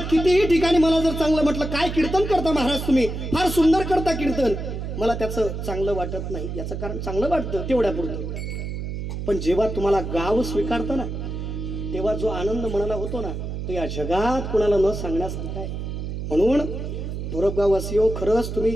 कितीही ठिकाणी मला जर चांगलं म्हटलं, काय कीर्तन करता महाराज तुम्ही, फार सुंदर करता कीर्तन, मला त्याचं चांगलं वाटत नाही. याचं कारण चांगलं वाटतं तेवढ्यापुरतं, पण जेव्हा तुम्हाला गाव स्वीकारतं ना, तेव्हा जो आनंद मनाला होतो ना, तो या जगात कुणाला न सांगण्यासारखा आहे. म्हणून धोरपगाववासियो, खरंच तुम्ही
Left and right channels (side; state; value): right; noise; hum, 5 dB below the sound